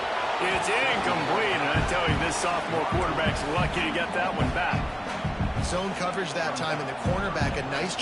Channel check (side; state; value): both; identical; correlation 1.00